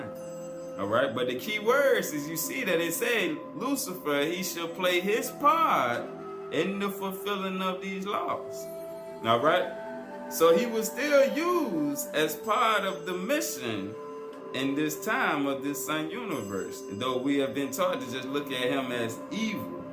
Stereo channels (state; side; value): identical; both; correlation 1.00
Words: Alright, but the key words is you see that it say Lucifer, he shall play his part in the fulfilling of these laws. Alright, so he was still used as part of the mission in this time of this sun universe, though we have been taught to just look at him as evil